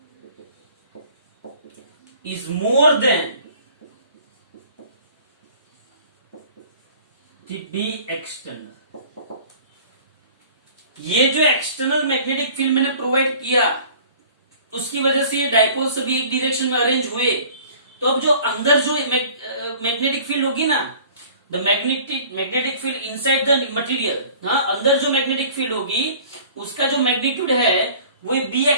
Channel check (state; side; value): inverted; both; correlation -0.48